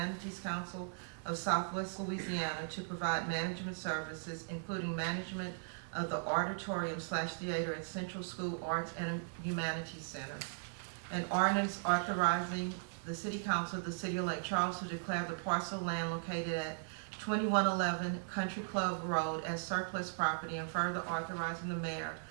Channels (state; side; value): silent; left; digital silence